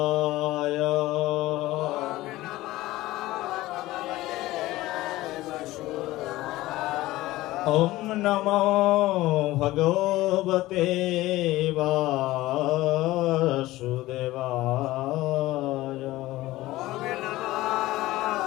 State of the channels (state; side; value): quieter; right; 17.4 dB